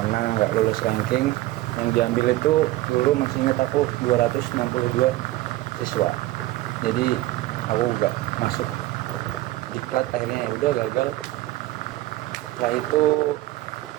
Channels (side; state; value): left; quieter; 17.2 dB